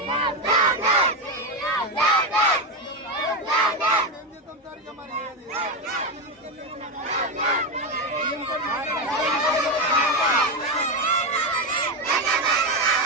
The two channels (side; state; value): both; normal; correlation 0.11